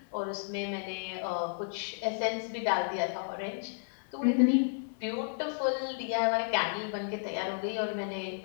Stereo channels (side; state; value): right; silent; digital silence